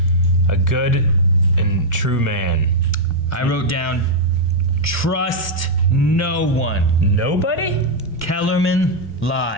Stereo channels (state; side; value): normal; both; correlation -0.04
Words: a good and true man. I wrote down, trust no one. Nobody? Kellerman